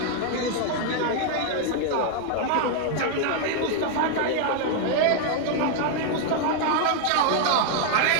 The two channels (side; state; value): both; different; correlation 0.00